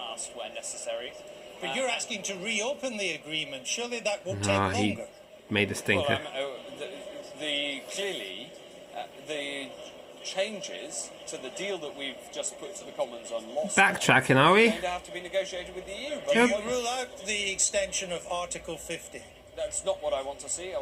where necessary. But you're asking to reopen the agreement. Surely that will take No, he longer. made a stinker. Well, clearly, the changes to the deal that we've just put to the Commons on loss Backtracking, are we? going to have to be negotiated with the EU. But Do you rule out the extension of Article 50? that's not what I want to see. I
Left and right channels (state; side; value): identical; both; correlation 1.00